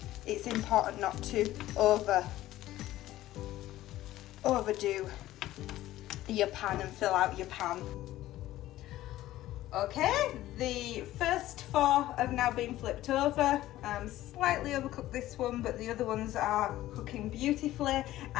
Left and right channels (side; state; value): right; quieter; 15.0 dB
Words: it's important not to overdo your pan and fill out your pan. Okay, the first 4 have now been flipped over. Slightly overcooked this one, but the other ones are cooking beautifully,